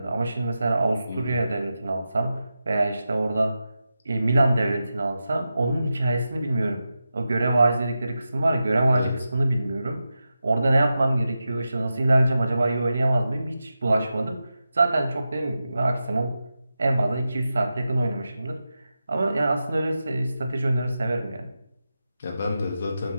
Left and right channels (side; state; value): both; inverted; correlation -0.91